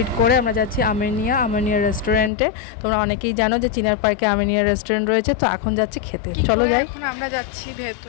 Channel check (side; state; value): right; drops out; at 2.3 s